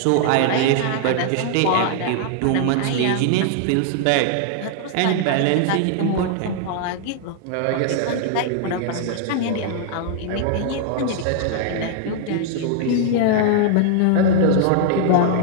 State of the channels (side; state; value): both; different; correlation -0.01